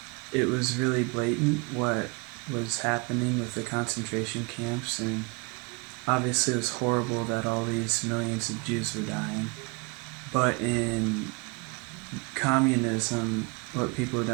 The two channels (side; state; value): left; quieter; 30.3 dB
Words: it was really blatant what was happening with the concentration camps, and obviously it was horrible that all these millions of Jews were dying. But in communism, what people